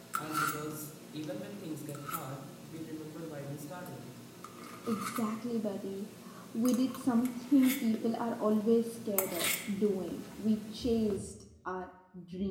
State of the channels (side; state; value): both; identical; correlation 1.00